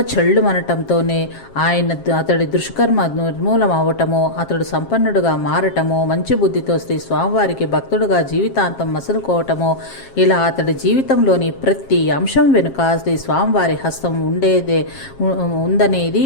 చెళ్ళుమనటంతోనే అతడి దుష్కర్మ నిర్మూలం అవ్వటము, అతడు సంపన్నుడుగా మారటము, మంచి బుద్ధితో శ్రీ స్వామివారికి భక్తుడుగా జీవితాంతం మసులుకోవటము, ఇలా అతడి జీవితంలోని ప్రతి అంశం వెనుక శ్రీ స్వామివారి హస్తం ఉందనేది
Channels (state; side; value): late; right; 7.4 ms